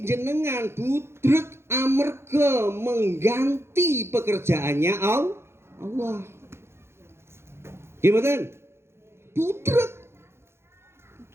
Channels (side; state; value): left; late; 0.12 ms